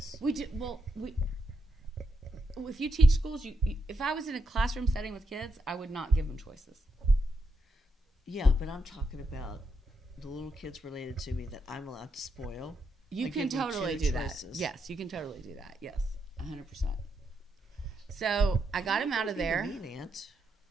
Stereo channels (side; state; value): both; normal; correlation 0.81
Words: We do. Well, if you teach schools, if I was in a classroom setting with kids, I would not give them choices. Yeah, but I'm talking about the little kids related to me that I'm allowed to spoil. You can totally do that. Yes, you can totally do that. Yes, 100%. So I got him out of there. Mean aunt.